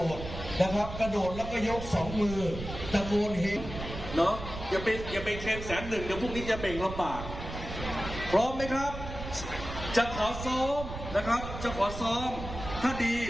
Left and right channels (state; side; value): noise; right; rumble, 9 dB below the sound